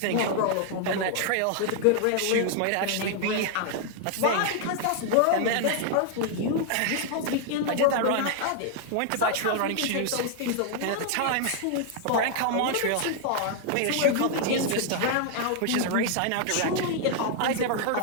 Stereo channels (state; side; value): different; both; correlation 0.00